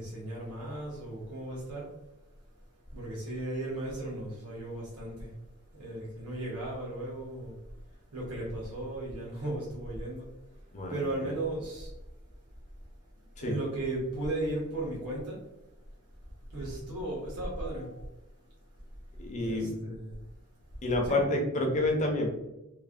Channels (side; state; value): both; normal; correlation 0.37